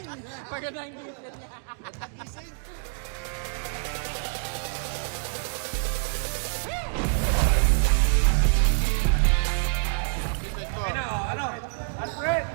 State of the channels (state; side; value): silent; left; digital silence